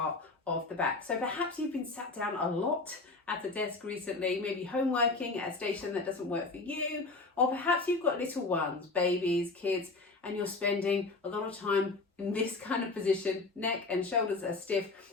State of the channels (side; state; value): right; quieter; 3.6 dB